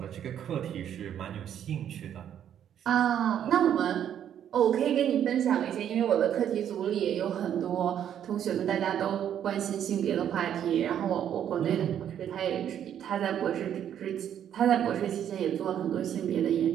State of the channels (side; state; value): left; quieter; 9.8 dB